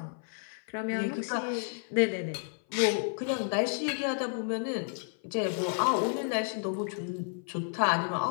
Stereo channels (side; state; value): right; silent; 56 dB below the other